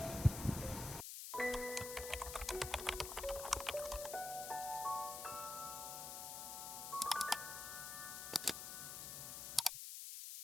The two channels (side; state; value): left; noise; hiss, 6 dB below the sound